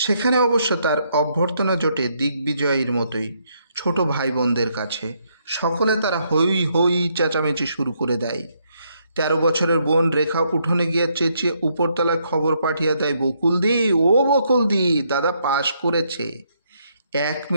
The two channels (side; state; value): both; inverted; correlation -0.74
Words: অবশ্য তার অভ্যর্থনা জোটে দিগ্বিজয়ীর মতোই ছোট ভাই বোনদের কাছে। সকলে তারা হই হই চেঁচামেচি শুরু করে দেয়। 13 বছরের বোন রেখা উঠোনে গিয়ে চেঁচিয়ে উপরতলায় খবর পাঠিয়ে দেয়, বকুলদি, ও বকুলদি, দাদা পাশ করেছে। 1